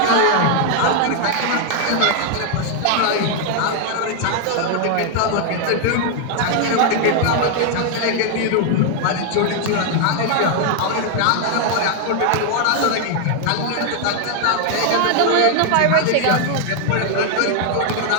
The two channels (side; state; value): both; different; correlation 0.00